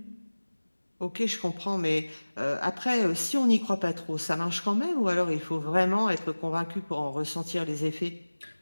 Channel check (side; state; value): both; inverted; correlation -1.00